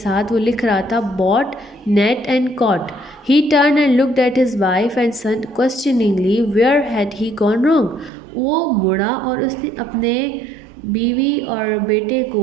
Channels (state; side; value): drops out; left; at 8.1 s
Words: वो लिख रहा था bought, net and caught. He turn and looked at his wife and son questioningly where had he gone wrong. वो मुड़ा और उसने अपने बीवी और बेटे